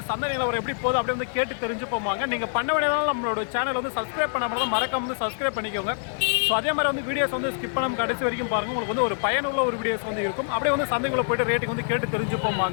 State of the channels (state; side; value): silent; right; digital silence